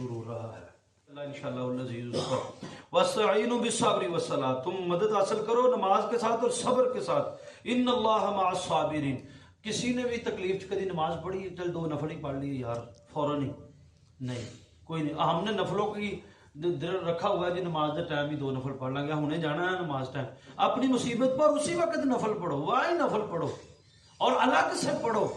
ہو رہا ہے۔ اللہ انشاءاللہ العزیز وَاسْتَعِينُوا بِالصَّبْرِ وَالصَّلَاةِ، تم مدد حاصل کرو نماز کے ساتھ اور صبر کے ساتھ۔ ان اللہ مع الصابرین، کسی نے بھی تکلیف کدی نماز پڑھی چل 2 نفل ہی پڑھ لیے یار فوراً ہی نہیں، کوئی نہیں۔ ہم نے نفلوں کی رکھا ہوا ہے جی نماز کے ٹائم ہی 2 نفل پڑھ لیں گے، ہم نے جانا ہے نماز ٹائم، اپنی مصیبت پر اسی وقت نفل پڑھو، واہی نفل پڑھو اور الگ سے پڑھو،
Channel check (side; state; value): both; identical; correlation 1.00